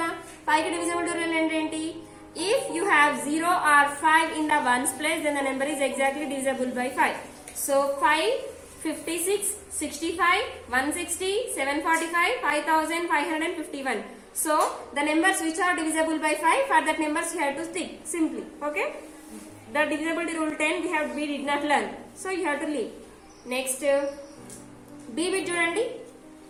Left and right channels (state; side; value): identical; both; correlation 1.00